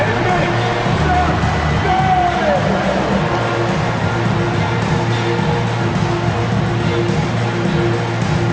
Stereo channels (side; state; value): both; identical; correlation 1.00